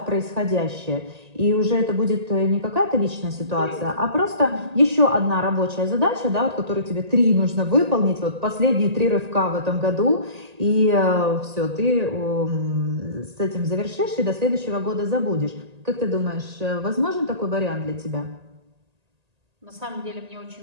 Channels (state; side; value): late; left; 1.8 ms